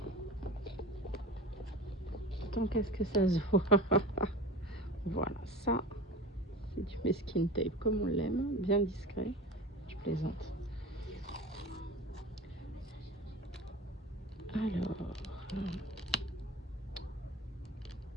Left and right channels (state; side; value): normal; both; correlation 0.33